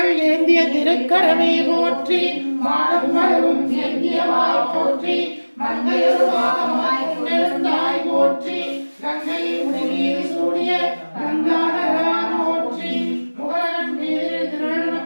ஏந்திய திருக்கரமே போற்றி, மாடம் மலரும் ஏந்தியவாய் போற்றி, மங்கையொருவாகமாய் கொண்டிருந்தாய் போற்றி, கங்கையில் உடனீர் சூடிய கங்காதரா போற்றி, முகலகன் மீதில் திருநடன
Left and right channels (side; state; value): both; inverted; correlation -1.00